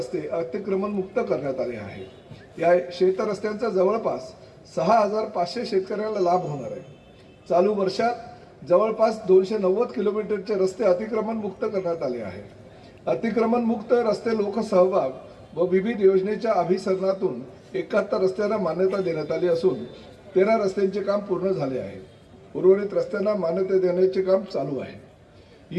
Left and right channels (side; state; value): both; identical; correlation 1.00